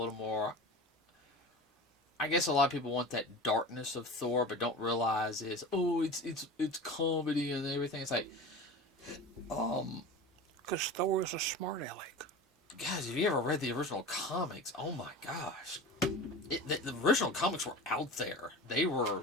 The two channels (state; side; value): normal; both; correlation 0.33